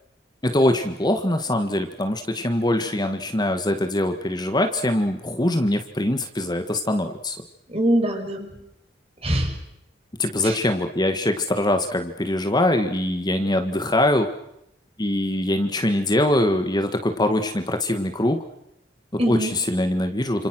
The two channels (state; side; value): normal; both; correlation 0.68